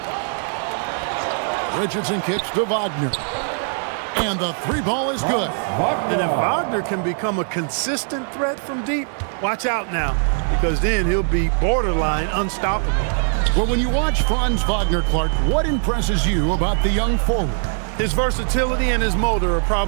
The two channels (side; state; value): left; silent; 58 dB below the other